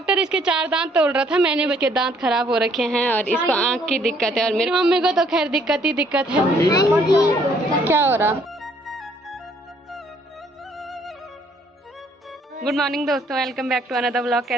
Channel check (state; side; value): normal; both; correlation 0.64